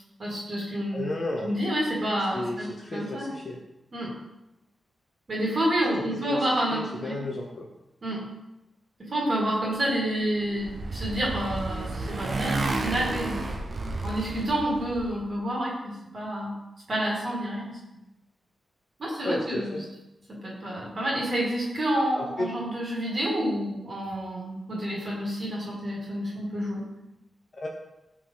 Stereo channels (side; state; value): both; normal; correlation 0.84